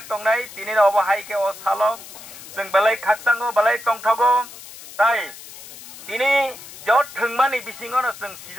tongnai tini no obahai ke o salo जों balai khaksango balai tongthago tai tini jot thangmani bisingono जों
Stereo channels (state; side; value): noise; left; hiss, 16 dB below the sound